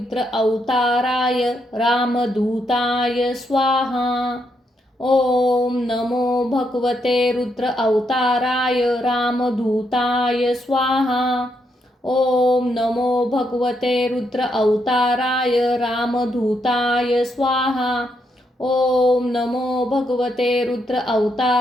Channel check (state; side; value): normal; both; correlation 0.79